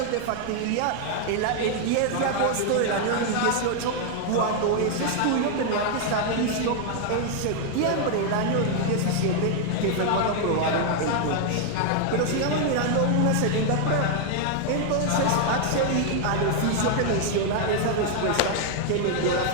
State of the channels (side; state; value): both; different; correlation 0.00